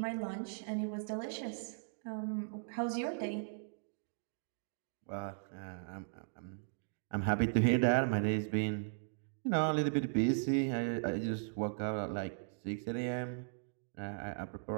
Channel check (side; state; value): left; silent; digital silence